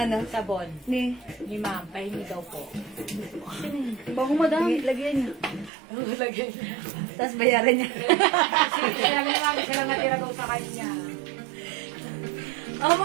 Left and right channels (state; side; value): drops out; left; at 5.7 s